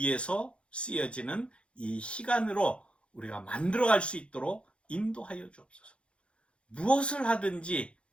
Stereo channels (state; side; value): late; right; 0.058 ms